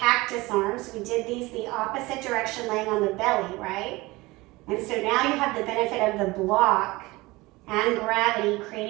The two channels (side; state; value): left; quieter; 21.5 dB